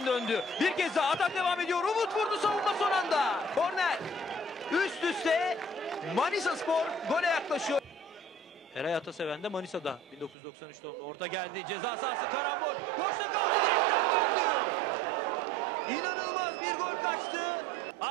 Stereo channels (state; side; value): drops out; left; at 10.4 s